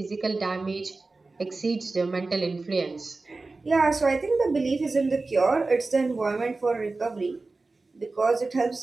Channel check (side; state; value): left; quieter; 3.5 dB